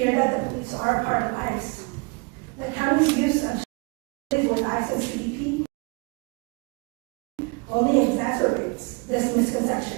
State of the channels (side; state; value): left; quieter; 30.2 dB